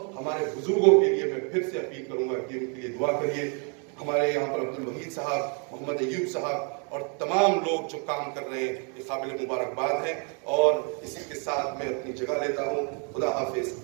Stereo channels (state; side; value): quieter; left; 38.5 dB